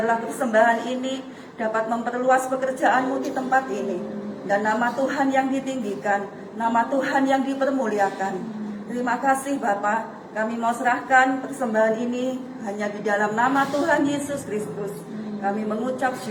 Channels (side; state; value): both; identical; correlation 1.00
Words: persembahan ini dapat memperluas pekerjaan-Mu di tempat ini, dan nama Tuhan yang ditinggikan, nama Tuhan yang dipermuliakan. Terima kasih Bapa, kami mau serahkan persembahan ini hanya di dalam nama Tuhan Yesus Kristus. Kami mengucap